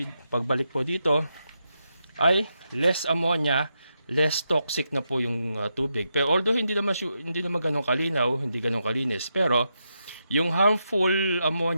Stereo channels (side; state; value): both; inverted; correlation -0.84